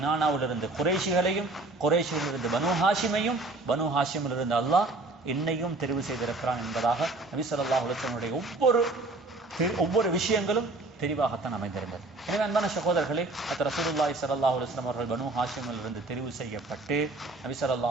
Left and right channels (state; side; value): quieter; left; 3.1 dB